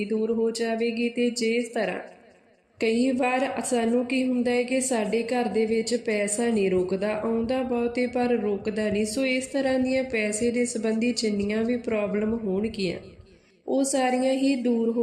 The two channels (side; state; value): both; identical; correlation 1.00